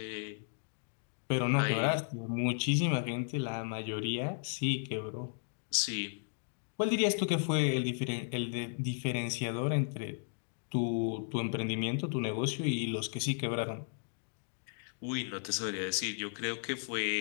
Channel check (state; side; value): silent; right; digital silence